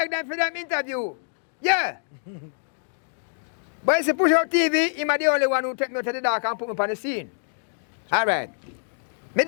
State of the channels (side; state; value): right; silent; digital silence